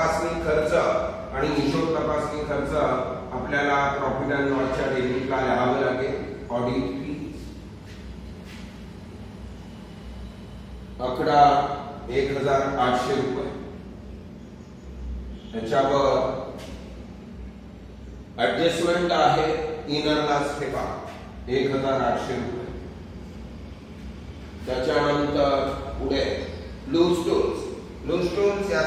खर्च, आणि हिशोब तपासणी खर्च आपल्याला प्रॉफिट अँड लॉसच्या डेबिटला लिहावं लागेल. ऑडिट फी 1,800 रुपये. त्याच्यावर ऍडजस्टमेंट आहे इनरला ठेवा 1,800 रुपये. त्याच्यानंतर पुढे लूज टूल्स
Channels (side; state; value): both; identical; correlation 1.00